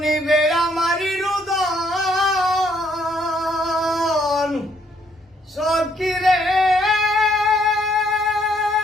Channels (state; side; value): normal; both; correlation 0.69